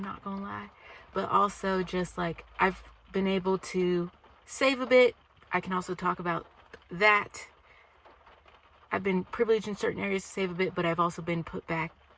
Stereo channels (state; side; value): identical; both; correlation 1.00